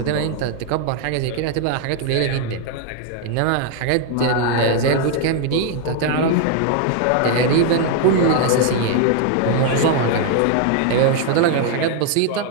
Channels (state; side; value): different; both; correlation 0.00